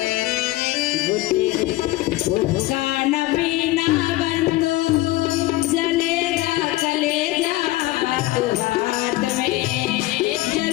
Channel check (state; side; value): quieter; right; 18.0 dB